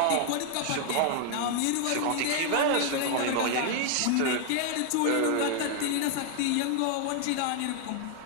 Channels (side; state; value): both; different; correlation 0.00